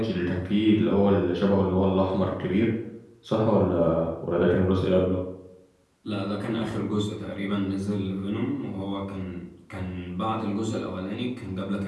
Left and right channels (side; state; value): both; identical; correlation 1.00